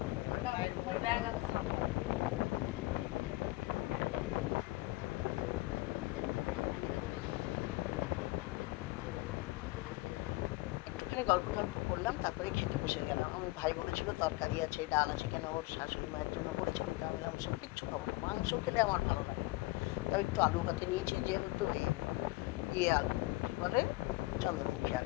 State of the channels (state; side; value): quieter; right; 21.2 dB